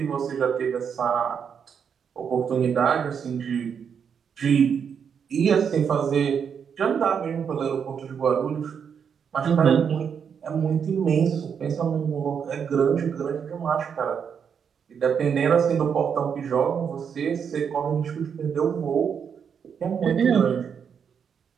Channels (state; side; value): quieter; left; 7.2 dB